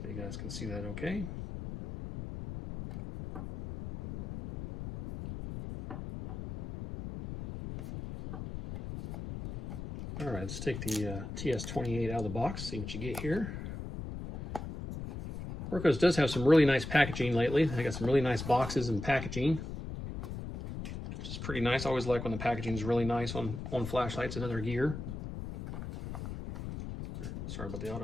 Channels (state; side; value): noise; left; rumble, 7 dB below the sound